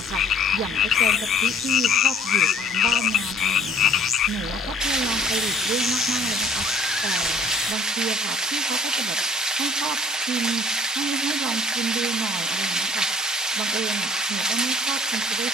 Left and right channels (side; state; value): both; normal; correlation 0.54